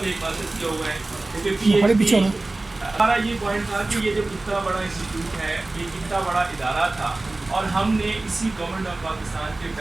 1 ماسٹر کیا ہوا ہے، کیونکہ پی ایچ ڈی. ہمارا یہ پوائنٹ تھا کہ یہ جب اتنا بڑا انسٹیٹیوٹ ہے، یہ اتنا بڑا ادارہ تھا، اور ہم نے اسی گورنمنٹ آف پاکستان کے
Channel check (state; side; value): quieter; left; 3.0 dB